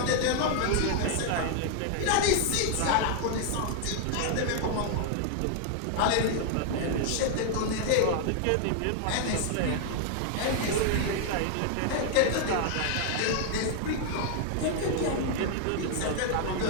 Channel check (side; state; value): both; different; correlation 0.00